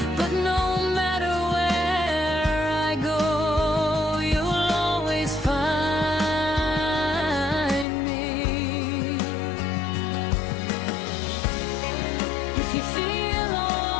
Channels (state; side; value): drops out; right; at 7.9 s